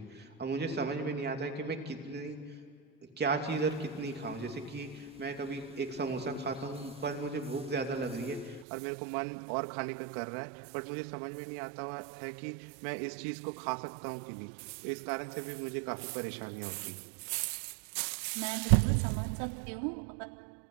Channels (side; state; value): left; drops out; at 8.7 s